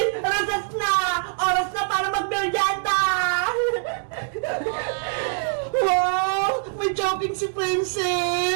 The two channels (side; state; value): left; silent; digital silence